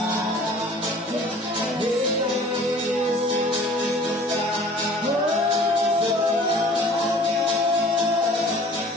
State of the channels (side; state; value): both; normal; correlation 0.49